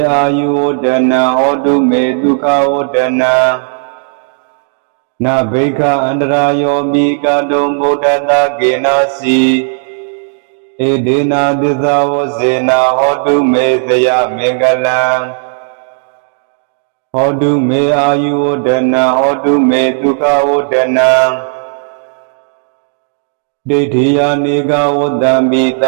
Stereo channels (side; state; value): left; silent; digital silence